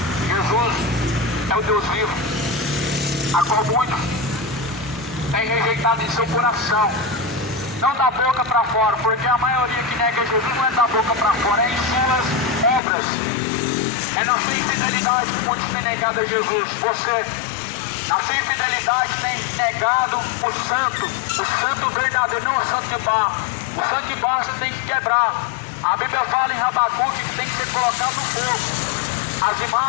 Jesus é o Deus vivo, a qual muitos têm rejeitado em seu coração. Não da boca para fora, porque a maioria que nega Jesus não é da boca para fora, é em suas obras. É na sua infidelidade que muitos têm negado a Jesus. Você, na sua infidelidade, tem negado o santo verdadeiro, não o santo de barro. O santo de barro você tem que quebrar. A Bíblia fala em Habacuque que tem que ser colocado no fogo. As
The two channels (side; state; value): right; drops out; at 12.8 s